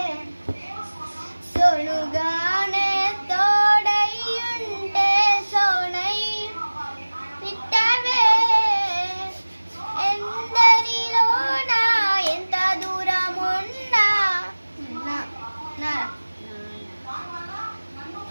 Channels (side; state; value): both; inverted; correlation -1.00